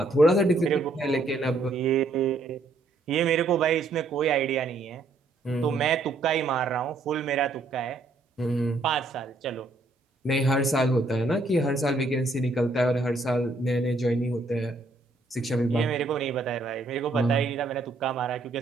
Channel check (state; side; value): quieter; left; 3.1 dB